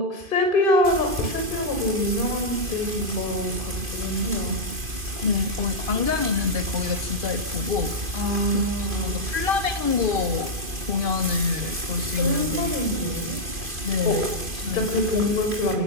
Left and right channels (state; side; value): late; left; 2.5 ms